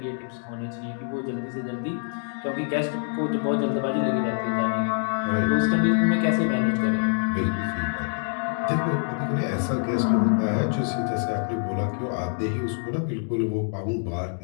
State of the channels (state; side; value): silent; right; 61 dB below the other